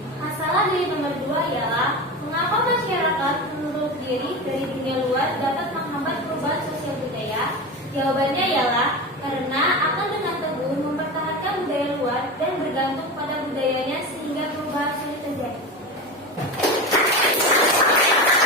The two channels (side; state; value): both; normal; correlation 0.24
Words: Masalah dari nomor 2 ialah mengapa masyarakat menurut diri dari dunia luar dapat menghambat perubahan sosial budaya? Jawabannya ialah karena akan dengan teguh mempertahankan budaya luar dan bergantung pada budayanya sehingga perubahan sulit terjadi.